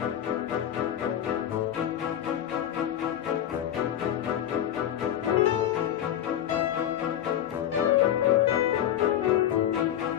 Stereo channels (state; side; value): quieter; right; 10.8 dB